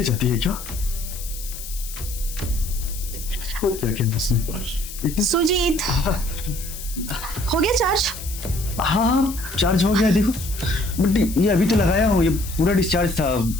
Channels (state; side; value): noise; left; hiss, 11 dB below the sound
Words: जाती है क्या? और क्या किया उसने? सुजीत, हो गया चार्ज? हाँ चार्ज हो गया। देखो बट ये अभी तो लगाया हो, ये पूरा डिस्चार्ज था।